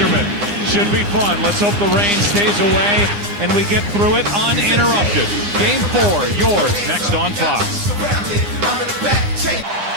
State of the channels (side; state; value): left; late; 9.8 ms